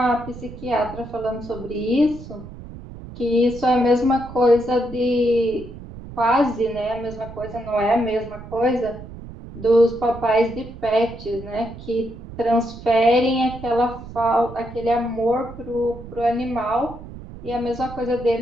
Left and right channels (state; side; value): noise; right; rumble, 14 dB below the sound